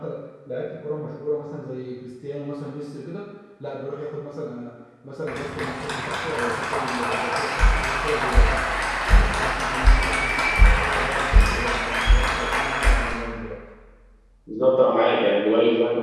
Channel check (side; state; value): both; identical; correlation 1.00